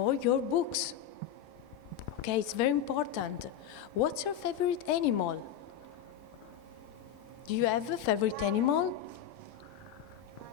your books. Okay, it's very important. What's your favorite animal? Do you have a favorite animal?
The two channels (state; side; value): quieter; right; 9.6 dB